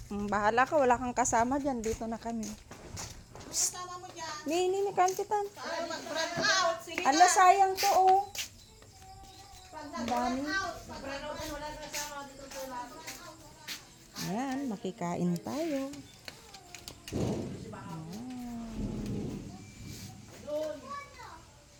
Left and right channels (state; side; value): identical; both; correlation 1.00